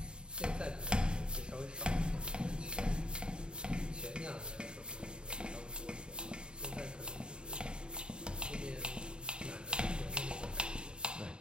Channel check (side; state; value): left; late; 0.050 ms